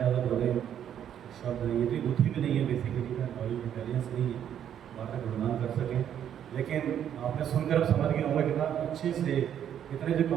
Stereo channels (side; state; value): left; quieter; 9.7 dB